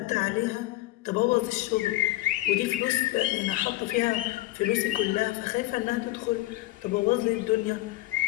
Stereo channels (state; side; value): quieter; right; 18.1 dB